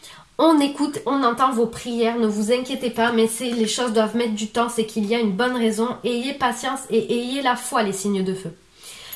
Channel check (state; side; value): identical; both; correlation 1.00